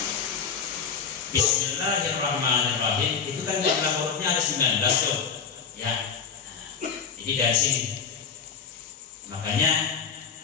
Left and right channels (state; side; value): quieter; right; 6.7 dB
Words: Bismillahirrahmanirrahim itu kan jumlah hurufnya ada 19 tuh ya. Jadi dari sini makanya